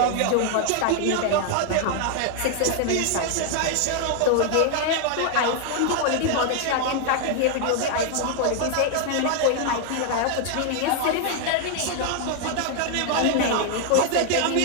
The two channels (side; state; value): both; different; correlation 0.00